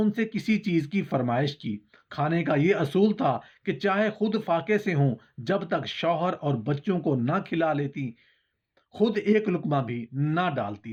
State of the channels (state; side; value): identical; both; correlation 1.00